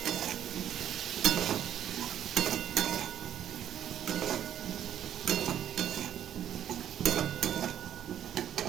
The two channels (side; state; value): left; quieter; 10.3 dB